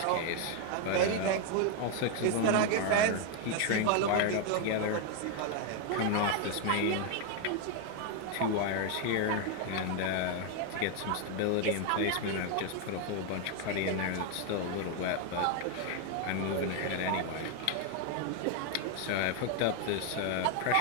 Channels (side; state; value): both; different; correlation 0.01